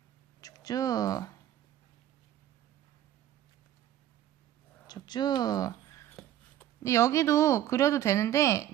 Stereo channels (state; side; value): quieter; left; 12.1 dB